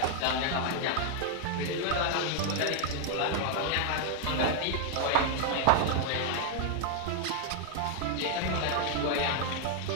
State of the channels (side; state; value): both; different; correlation 0.00